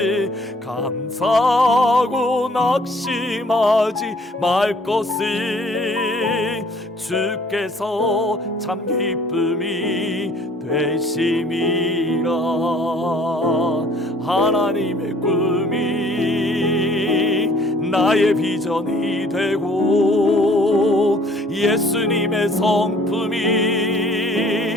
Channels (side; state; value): both; normal; correlation 0.56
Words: 감사하고 낙심하지 말 것은 주께서 참 기쁨이 되심이라. 하나님의 꿈이 나의 비전이 되고, 예수님의 성품이